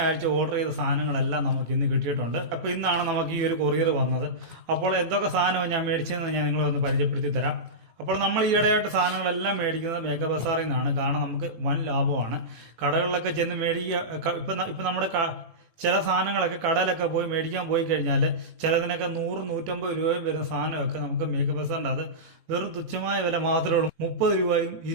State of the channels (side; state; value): left; late; 18 ms